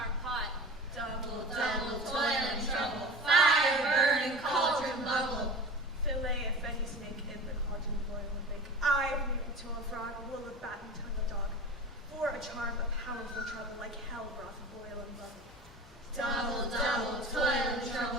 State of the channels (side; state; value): both; normal; correlation 0.35